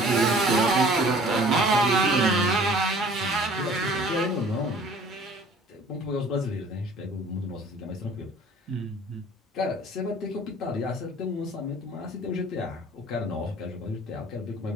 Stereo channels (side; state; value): both; normal; correlation 0.50